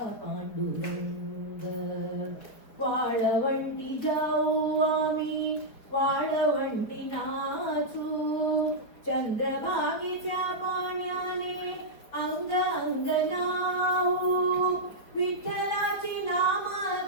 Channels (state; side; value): late; right; 4.7 ms